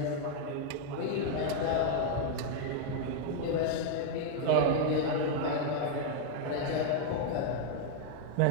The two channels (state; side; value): different; both; correlation 0.00